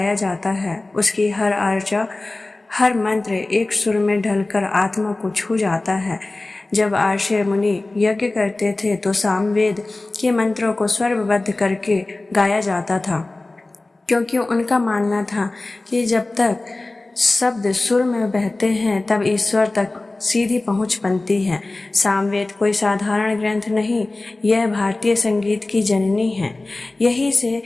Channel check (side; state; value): right; quieter; 3.0 dB